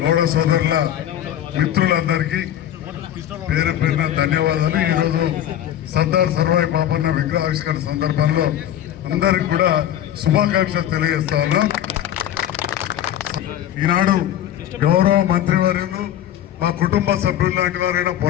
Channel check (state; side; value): quieter; right; 11.4 dB